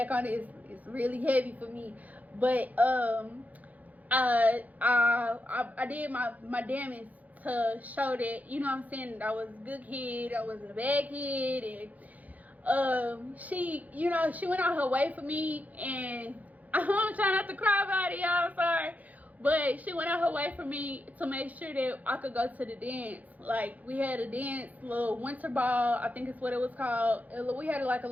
on it, it's really heavy for me. But I did my damage to show that, you know what I'm saying, that I was a good kid, I wasn't a bad kid. And she, you know, she went out her way for me, and I'm trying not to cry about it, y'all, I'm sorry. But she went out her way for me to make sure that I could go to the dance. Like, we had a dance, little winter ball, I think it's what it was called. We had like a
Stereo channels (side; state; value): left; late; 0.077 ms